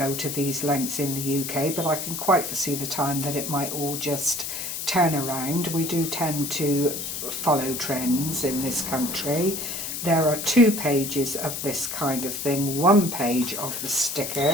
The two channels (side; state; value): left; noise; hiss, 5 dB below the sound